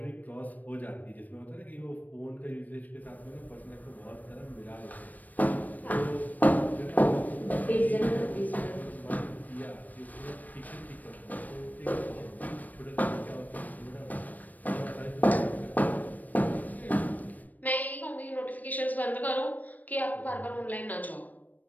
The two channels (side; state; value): right; late; 0.081 ms